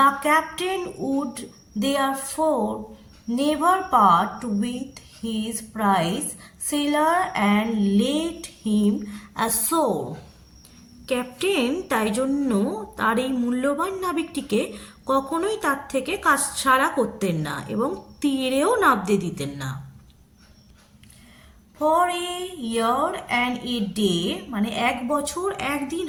captain would therefore never part with his prize sailor and let him ashore. Captain তাই জন্য তার এই মূল্যবান নাবিকটিকে কখনোই তার থেকে কাজ ছাড়া করতেন না এবং তীরেও নামতে দিতেন না। For a year and a day, মানে 1 বছর 1 দিন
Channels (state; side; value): identical; both; correlation 1.00